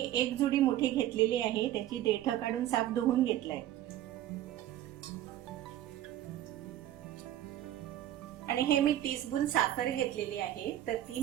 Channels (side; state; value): left; quieter; 12.9 dB